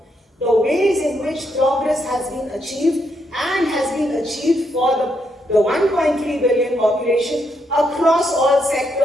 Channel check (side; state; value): both; normal; correlation 0.78